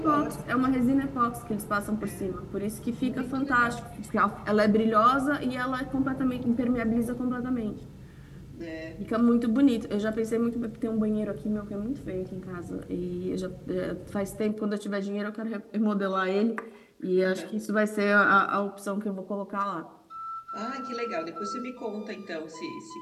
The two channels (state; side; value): identical; both; correlation 1.00